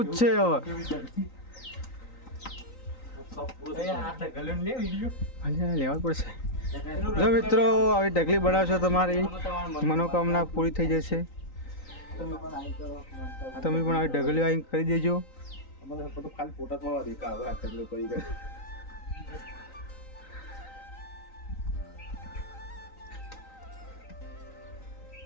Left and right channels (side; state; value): right; late; 3.9 ms